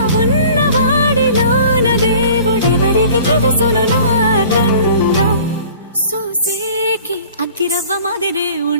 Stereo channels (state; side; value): inverted; both; correlation -0.47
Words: ఉన్నవాడిలోన దేవుడెవరికి తెలుసును నాకన్నా. సూసేకి అగ్గిరవ్వ మాదిరే